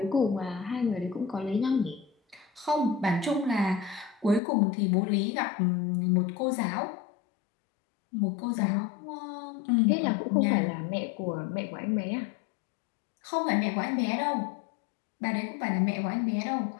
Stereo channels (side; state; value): right; drops out; at 4.4 s